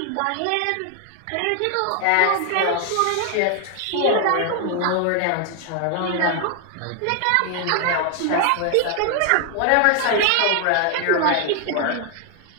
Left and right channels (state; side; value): different; both; correlation 0.00